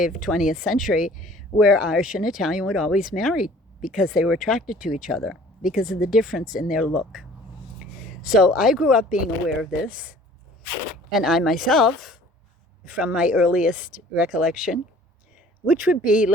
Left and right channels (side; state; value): both; normal; correlation 0.51